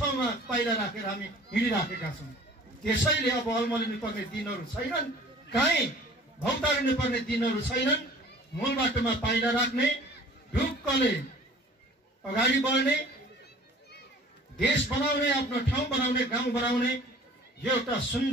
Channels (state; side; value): normal; both; correlation 0.48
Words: पाइला राखेर हामी हिँडिराखेका छौँ। त्यसैले अब अल्मलिनु पर्ने दिनहरू छैनन्, कहीँ भौतारिनु पर्ने दिनहरू छैनन्। मूल बाटोमा पाइला राख्ने, ढुक्कले अगाडि बढ्ने, देश बनाउने, आफ्नो ठाउँ बनाउने, गाउँ बनाउने यो एउटा